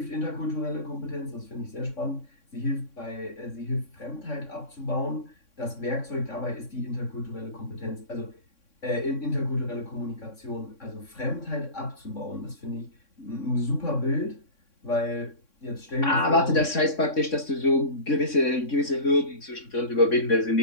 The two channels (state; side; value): late; right; 3.6 ms